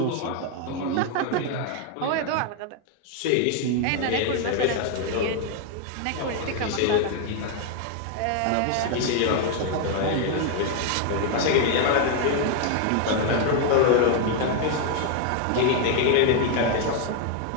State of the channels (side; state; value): both; different; correlation 0.01